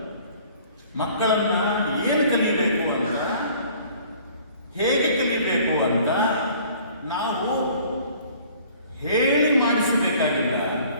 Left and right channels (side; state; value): both; inverted; correlation -0.53